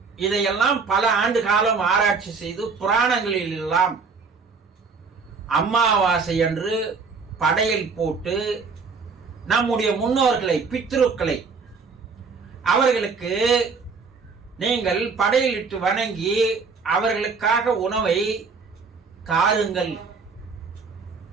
இதையெல்லாம் பல ஆண்டு காலம் ஆராய்ச்சி செய்து புராணங்களில் எல்லாம் அமாவாசை அன்று படையல் போட்டு நம்முடைய முன்னோர்களை, பித்ருக்களை, அவர்களுக்கு நீங்கள் படையலிட்டு வணங்கி அவர்களுக்காக உணவை தாருங்கள்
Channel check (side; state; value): left; quieter; 4.9 dB